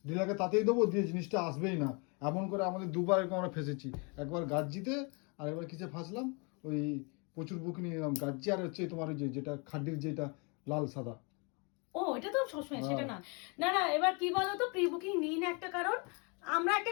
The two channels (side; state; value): right; quieter; 32.5 dB